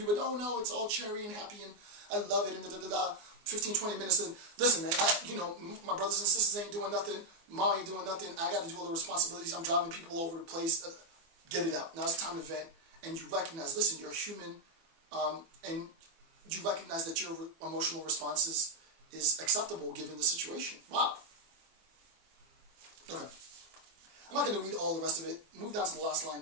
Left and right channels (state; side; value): late; left; 24 ms